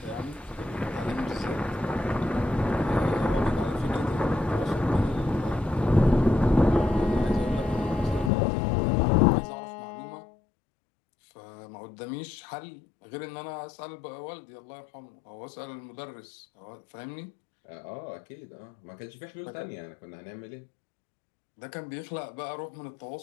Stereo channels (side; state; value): right; drops out; at 8.3 s